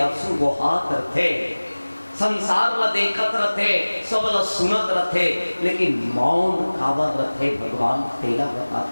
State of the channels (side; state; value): both; inverted; correlation -1.00